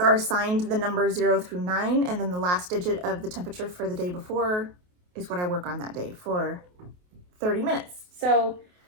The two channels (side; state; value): left; late; 28 ms